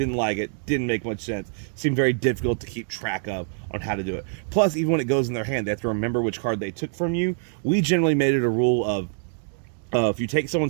like it, didn't make much sense, seemed very difficult to keep track of on how to do it. Plus, even when it goes in their hand, they have to remember which card they took from you. We generally made it a rule of, if you take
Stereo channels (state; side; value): silent; left; digital silence